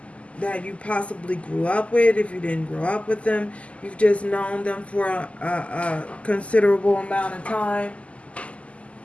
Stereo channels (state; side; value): late; right; 0.062 ms